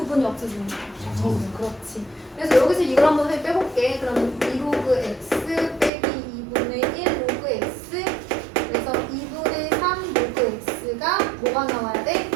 없어지니까. 그렇지. 그래서 여기서 이걸 한번 빼볼게. 그럼 2로그 x 빼기 2분의 1 로그 x. 그래서 2분의 3 로그 x가 뭐가 나와야 돼?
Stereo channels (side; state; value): left; drops out; at 5.9 s